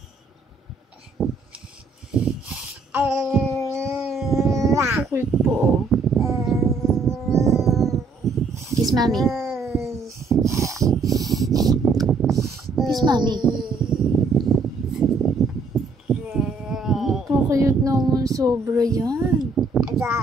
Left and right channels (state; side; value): quieter; left; 4.0 dB